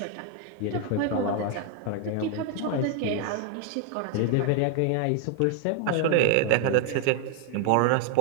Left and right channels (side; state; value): both; different; correlation 0.00